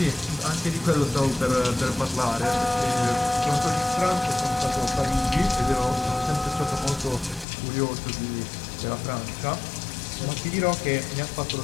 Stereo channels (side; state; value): right; drops out; at 7.5 s